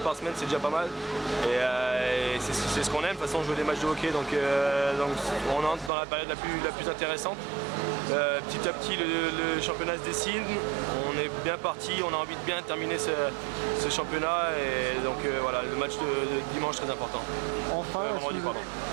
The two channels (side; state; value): left; drops out; at 5.9 s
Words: semaine, c'est déjà pas mal. Et c'est ce qu'on aime, de toute façon, jouer des matchs de hockey. Donc on entre dans la période la plus intéressante. Petit à petit, le championnat se dessine. On est bien parti, on a envie de bien terminer ce championnat. Et donc voilà, le match de dimanche très important. Enfin,